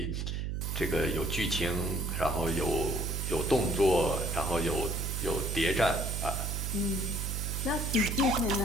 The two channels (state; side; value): noise; right; hum, 2 dB below the sound